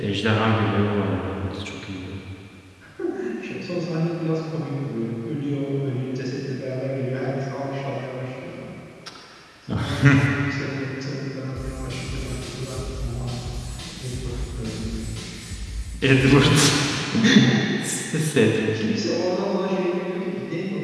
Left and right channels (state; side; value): identical; both; correlation 1.00